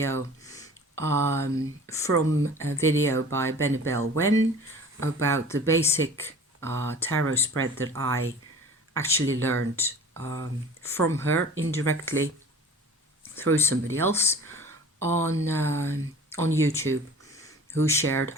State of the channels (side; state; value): both; normal; correlation 0.43